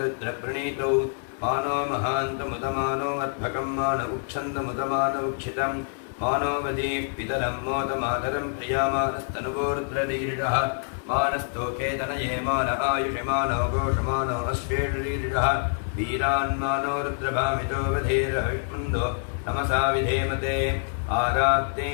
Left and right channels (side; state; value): right; silent; digital silence